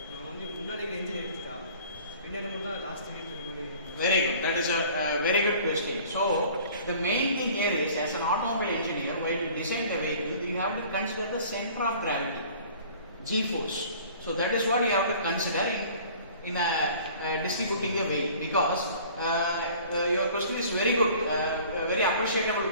நம்ம வந்து முன்னாடி இன்ஜின் எடுத்துட்டா பின்னாடி மட்டும் தான் லாஸ்ட் வீட்டில் இருக்கிற மாதிரி. Very good. That is a very good question. So the main thing here is, as an automobile engineer, while you design the vehicle, you have to consider the center of gravity, G-force. So that is what you have to consider in distributing the weight, because your question is very good, very appreciable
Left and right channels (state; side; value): inverted; both; correlation -0.49